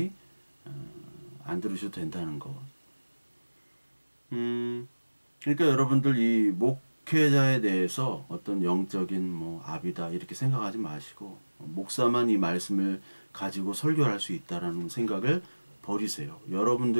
안 들으셔도 된다는 거. 그러니까 여러분들 이 목회자에 대해서 어떤 영적인 뭐 압이다 이렇게 생각하지 마시고 목사만 이 말씀을 가지고 설교를 할 수 있다라는 생각을 버리세요.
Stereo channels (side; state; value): both; inverted; correlation -1.00